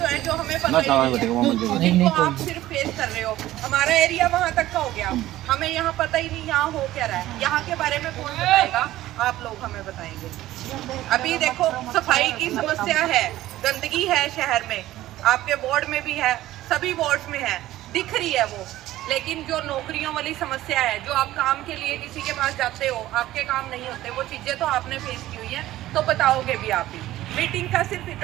हैं जो हमें पता नहीं है, जिनको आप सिर्फ फेस कर रहे हो। हमारा एरिया वहाँ तक का हो गया, हमें यहाँ पता ही नहीं यहाँ हो क्या रहा है, यहाँ के बारे में कौन बताएगा? आप लोग हमें बताएंगे। अभी देखो सफाई की समस्या है, गंदगी है शहर में, आपके वार्ड में भी है, सभी वार्ड में है, दिख रही है वो। लेकिन जो नौकरियों वाली समस्या है, जो आप काम के लिए किसी के पास जाते हो, आपके काम नहीं होते, वो चीजें तो आपने फेस की हुई है, तो बताओगे भी आप ही। मीटिंग का सिर्फ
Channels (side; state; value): left; quieter; 15.1 dB